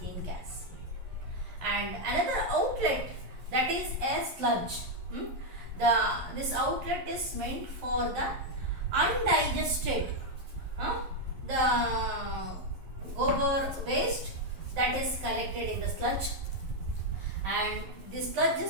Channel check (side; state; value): left; late; 11 ms